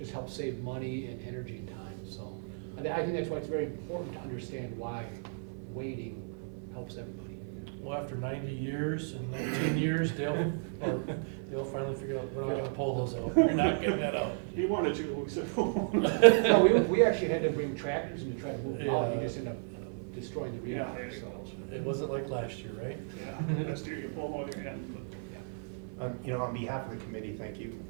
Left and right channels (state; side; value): silent; left; 55 dB below the other